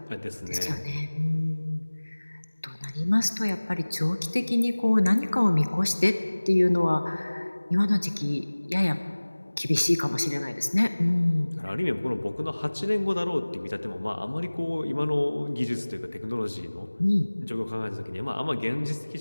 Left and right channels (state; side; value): inverted; both; correlation -1.00